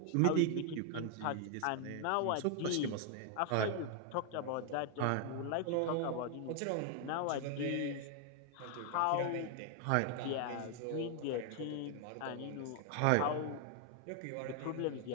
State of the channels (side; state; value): both; different; correlation 0.00